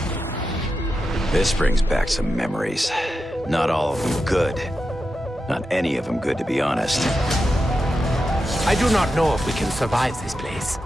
This brings back some memories. Not all of them good. Not any of them good, to be honest. I do not know if we can survive this place,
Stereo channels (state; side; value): normal; both; correlation 0.89